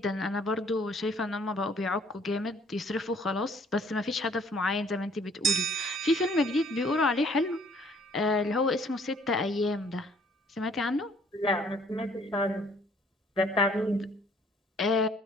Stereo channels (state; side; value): normal; both; correlation 0.60